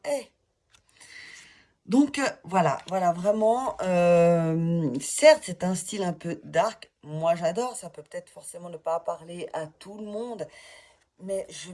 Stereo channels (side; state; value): both; identical; correlation 1.00